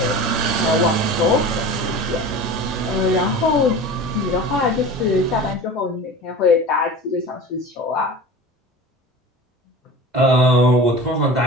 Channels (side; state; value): both; normal; correlation 0.35